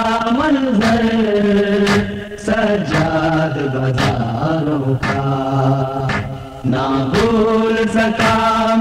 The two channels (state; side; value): identical; both; correlation 1.00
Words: منظر سجاد بازاروں کا، نہ بھول سکا